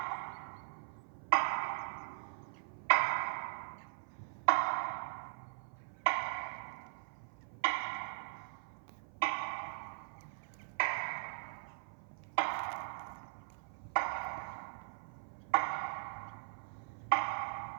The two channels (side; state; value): left; silent; 51 dB below the other